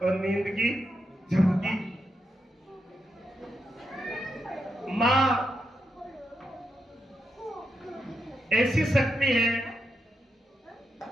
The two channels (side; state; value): both; normal; correlation 0.84